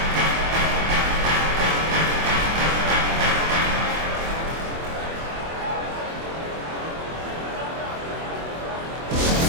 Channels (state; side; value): late; left; 24 ms